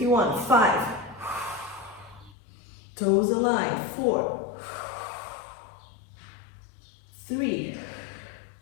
you want. 5. Toes aligned. 4, 3.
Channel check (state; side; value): drops out; right; at 2.4 s